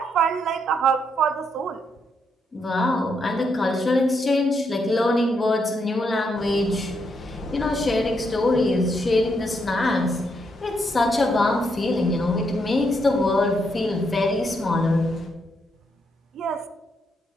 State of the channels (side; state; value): both; normal; correlation 0.78